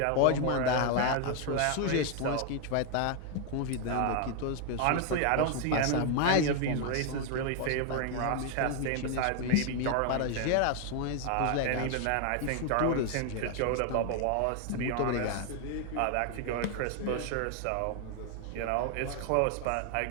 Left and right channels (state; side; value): different; both; correlation 0.00